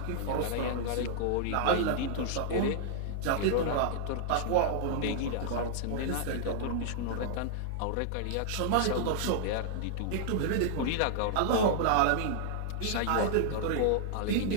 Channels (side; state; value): both; different; correlation -0.01